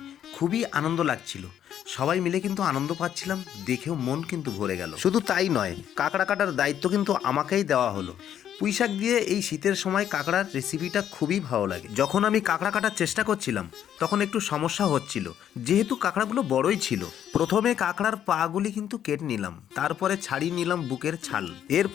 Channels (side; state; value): right; quieter; 10.1 dB